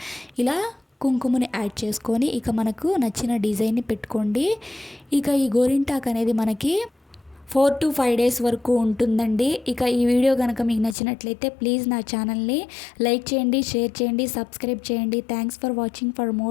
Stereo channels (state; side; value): drops out; right; at 11.0 s